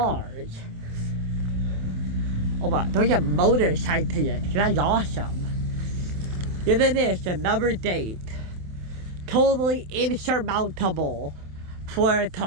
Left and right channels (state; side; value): late; left; 27 ms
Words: Oh my, those are motorcyclists. That's awesome. Here it is, another date. Totally insurmountable for a